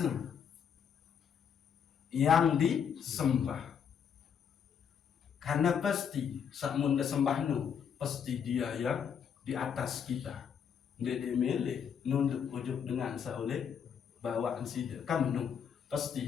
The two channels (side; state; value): right; quieter; 7.6 dB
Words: yang disembah, karena pasti sakmun disembah pasti dia yang di atas kita, dia dimilih nunduk ujuk dengan saoleh bawaan sida kamu